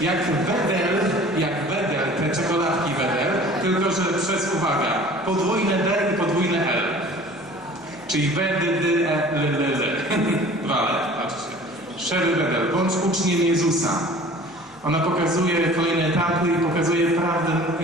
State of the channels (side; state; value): left; noise; hum, 28 dB below the sound